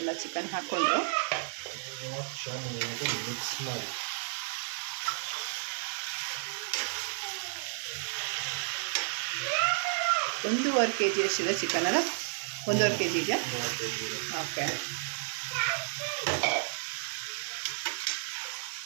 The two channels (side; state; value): left; silent; digital silence